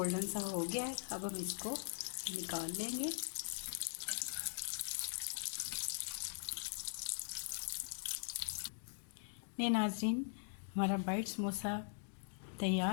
सा हो गया है। अब हम इसको निकाल लेंगे। ये नाज़रीन, हमारा वाइट समोसा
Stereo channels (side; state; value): right; silent; digital silence